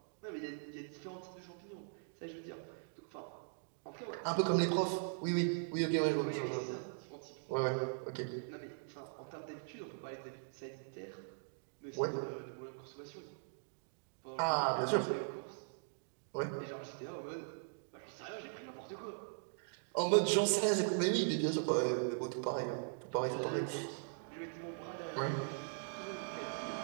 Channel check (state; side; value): silent; left; digital silence